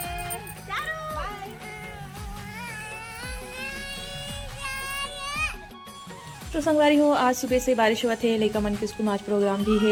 तो संगवारी हो आज सुबह से बारिश हुआ थे लेका मन के स्कूल में आज प्रोग्राम भी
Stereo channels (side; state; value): both; identical; correlation 1.00